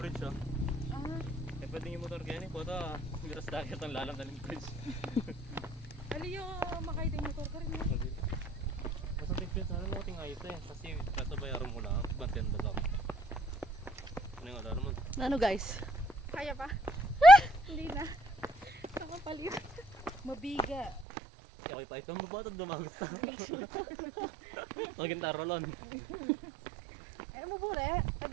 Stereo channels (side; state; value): left; drops out; at 21.1 s